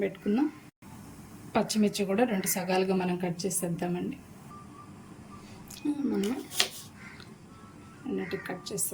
పెట్టుకుందాం. పచ్చిమిర్చి కూడా 2 సగాలుగా మనం కట్ చేసేద్దామండి. మనం అన్నిటికి కట్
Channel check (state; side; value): identical; both; correlation 1.00